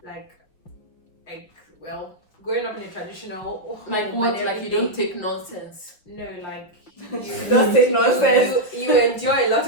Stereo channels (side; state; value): right; late; 5.9 ms